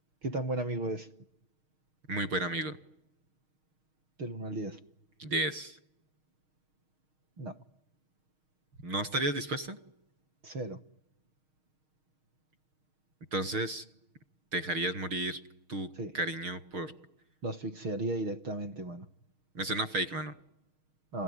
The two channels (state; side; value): late; left; 6.4 ms